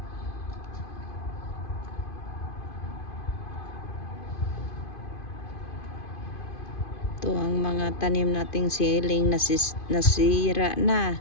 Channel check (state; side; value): late; right; 2.5 ms